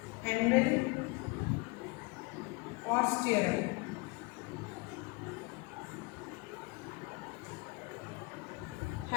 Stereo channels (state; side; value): quieter; right; 26.6 dB